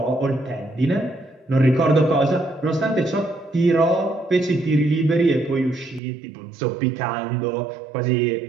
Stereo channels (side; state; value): left; drops out; at 6.0 s